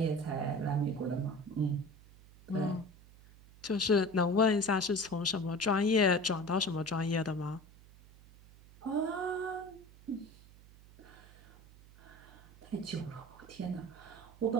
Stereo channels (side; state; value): right; noise; hum, 22 dB below the sound